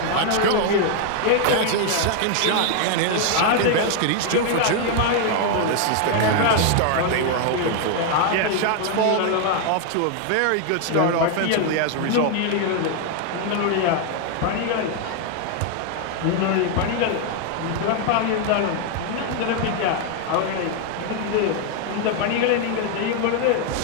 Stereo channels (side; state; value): both; different; correlation 0.00